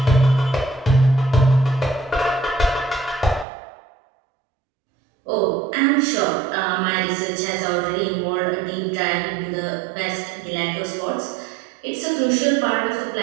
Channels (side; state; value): left; drops out; at 3.5 s